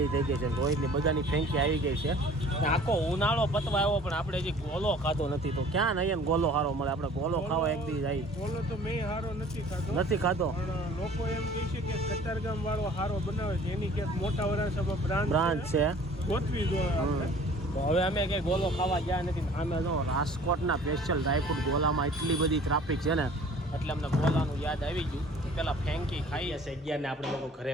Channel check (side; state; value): both; normal; correlation 0.50